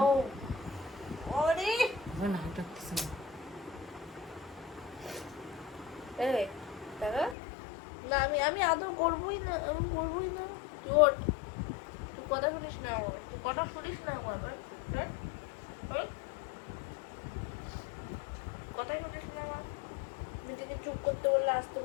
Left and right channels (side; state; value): right; drops out; at 7.4 s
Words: না আমি আদৌ করবোই না, আমি করবোই না। তুই কথা শুনিস না আমার, তুই কথা শুনিস না আমার, কথাই শুনিস না আমার। নিজেকে চুপ করতে বললে, আসতে